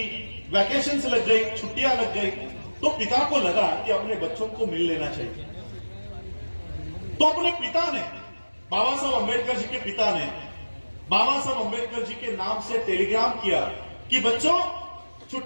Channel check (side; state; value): both; inverted; correlation -1.00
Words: वैकेशन लग गई, छुट्टियां लग गई, तो पिता को लगा कि अपने बच्चों को मिल लेना चाहिए। तो अपने पिता ने, बाबा साहब अंबेडकर जी के पिता ने बाबा साहब अंबेडकर जी के नाम से टेलीग्राम किया कि बच्चों